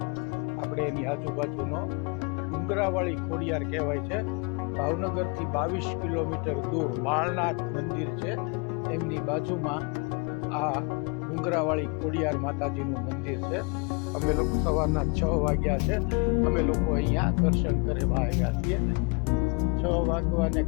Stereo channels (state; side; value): quieter; right; 31.7 dB